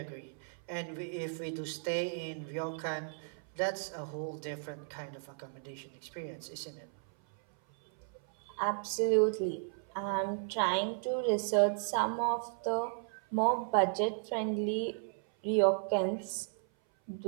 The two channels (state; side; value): silent; left; 54 dB below the other